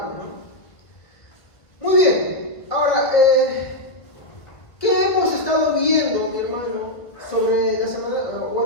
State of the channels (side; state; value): right; late; 1.7 ms